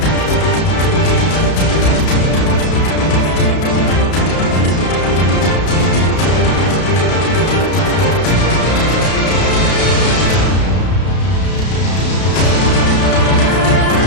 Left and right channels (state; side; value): late; right; 32 ms